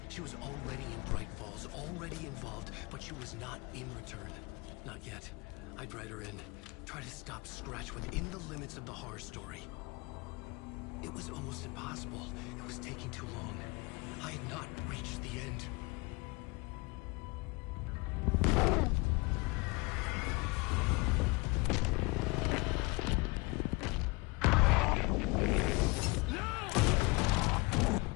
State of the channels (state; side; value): quieter; right; 26.0 dB